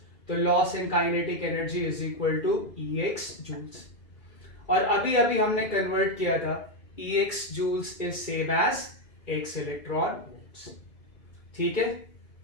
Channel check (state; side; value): late; right; 2.2 ms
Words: तो loss in kinetic energy is equal to E X joules. और अभी अभी हमने कन्वर्ट किया था, E X joules is same as X electron volts. ठीक है,